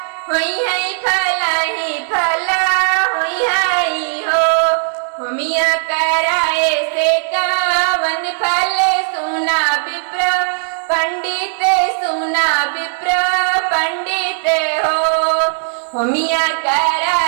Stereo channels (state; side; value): silent; left; digital silence